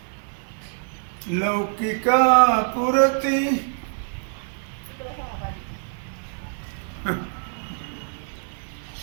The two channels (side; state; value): left; silent; 62 dB below the other